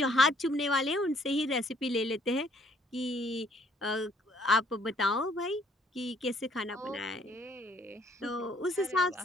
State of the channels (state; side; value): normal; both; correlation 0.63